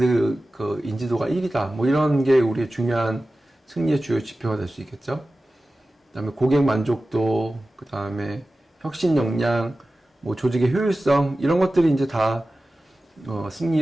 그 인지도가 1위다. 뭐 이런 게 우리의 중요한 승리의 주요 지표가 될 수 있겠죠. 그다음에 고객 만족도, 그다음에 혁신 역량, 뭐 조직의 효율성 이런 것들이 이제 다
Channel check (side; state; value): both; normal; correlation 0.95